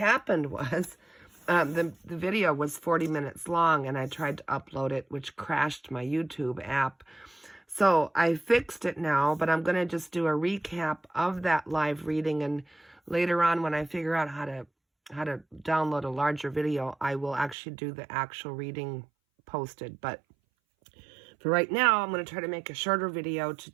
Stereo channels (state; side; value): drops out; left; at 17.6 s